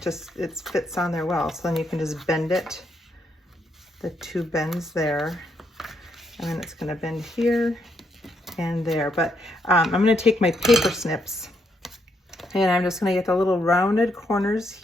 fits on there well. So then you can just bend it, the two bends there, and then it's going to bend here and there. But I'm going to take my paper snips, and I'm just going to get the little rounded corners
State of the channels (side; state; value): both; normal; correlation 0.77